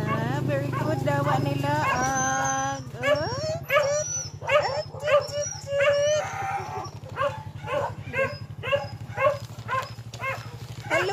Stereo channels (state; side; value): identical; both; correlation 1.00